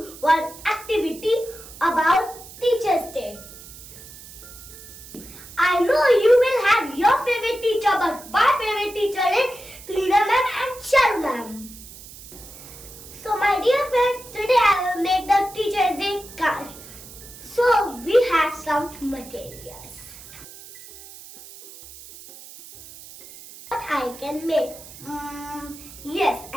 one activity about Teacher's Day. I know you will have your favorite teacher, but my favorite teacher is Tuhina ma'am and Shalu ma'am. So my dear friends, today I will make the Teacher's Day card. So we have some materials. What I can make? Yes,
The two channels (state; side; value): noise; right; hiss, 17 dB below the sound